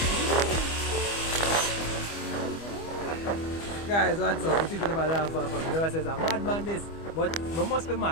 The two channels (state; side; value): late; right; 25 ms